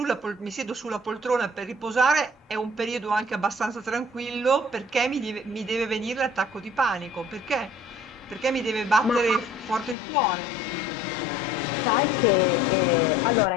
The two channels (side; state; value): right; drops out; at 10.0 s